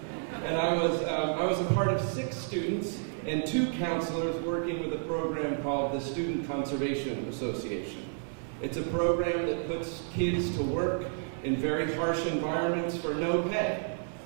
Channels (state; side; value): silent; left; 57 dB below the other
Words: And I was a part of 6 students and 2 counselors working with a program called the Student Conservation Association. It's a program that puts kids to work in very harsh environments for no pay,